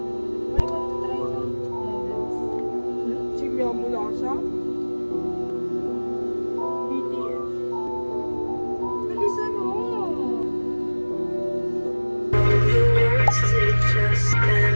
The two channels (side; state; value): both; inverted; correlation -1.00